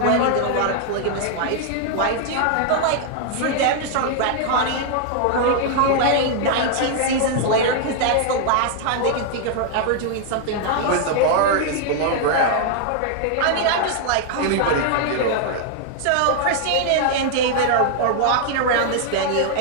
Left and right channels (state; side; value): different; both; correlation 0.00